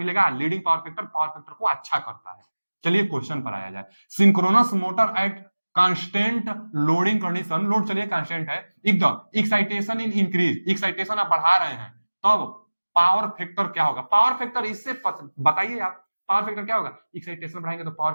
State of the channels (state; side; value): inverted; both; correlation -1.00